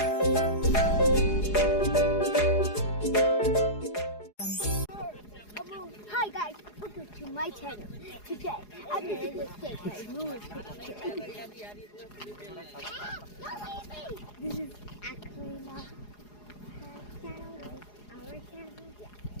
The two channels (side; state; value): right; late; 4.8 ms